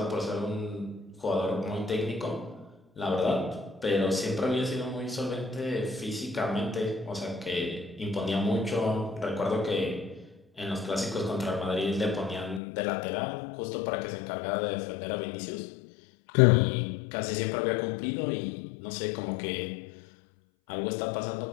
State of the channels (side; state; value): right; drops out; at 12.6 s